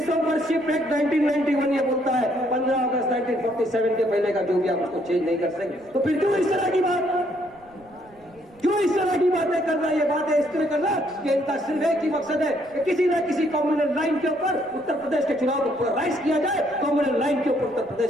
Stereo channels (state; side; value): noise; right; rumble, 29 dB below the sound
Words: ऑफ वर्शिप एक्ट 1991 ये बोलता है 15 अगस्त 1947 के पहले का जो भी आप उसको चेंज नहीं कर सकते। तो फिर क्यों इस तरह की बात, क्यों इस तरह की बातें करना? ये बातें इस तरह करना कि इनका सिर्फ एक ही मकसद है कि किसी न किसी कम्युनल लाइन के ऊपर उत्तर प्रदेश के चुनाव को पोलराइज किया जाए, कम्युनल लाइन के ऊपर उत्तर